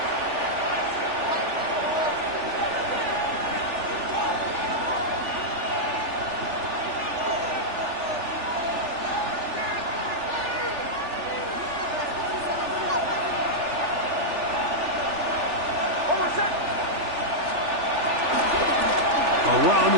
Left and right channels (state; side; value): late; left; 3.4 ms